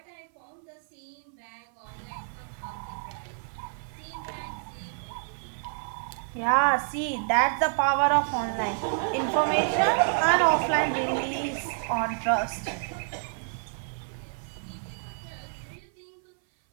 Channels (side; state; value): left; silent; 59 dB below the other